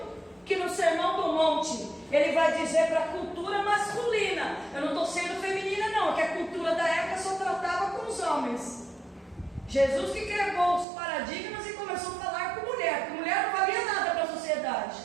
que no Sermão do Monte ele vai dizer para a cultura masculina. Eu não estou sendo feminina não, que a cultura da época só tratava com os homens. Jesus que quebrou os paradigmas e começou a falar com mulher, porque mulher não valia nada para a sociedade.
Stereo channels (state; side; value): drops out; left; at 10.9 s